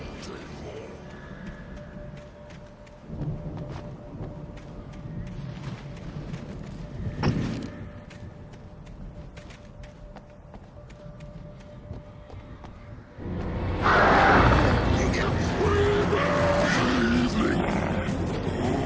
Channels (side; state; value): both; identical; correlation 1.00